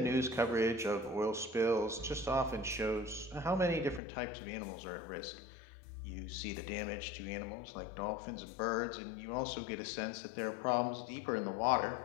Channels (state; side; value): drops out; right; at 4.0 s